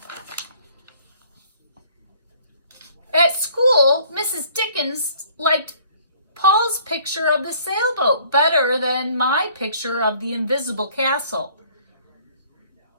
At school, Mrs. Dickens liked Paul's picture of the sailboat better than my picture of the invisible castle.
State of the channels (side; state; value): both; inverted; correlation -0.57